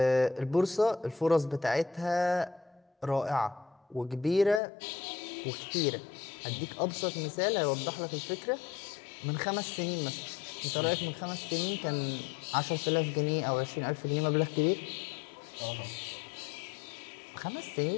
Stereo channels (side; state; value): right; drops out; at 4.6 s